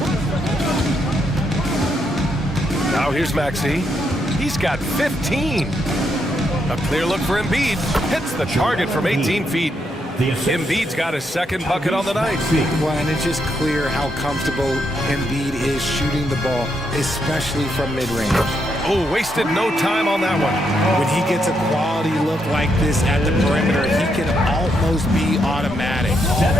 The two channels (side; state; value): both; normal; correlation 0.79